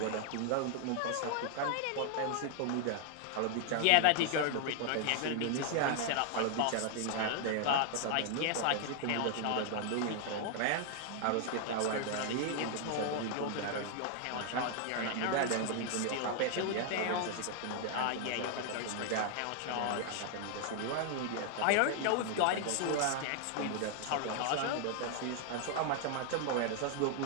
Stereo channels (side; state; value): both; different; correlation 0.00